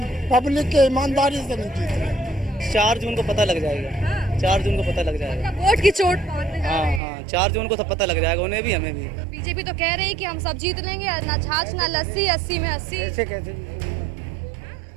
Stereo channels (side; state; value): left; drops out; at 7.0 s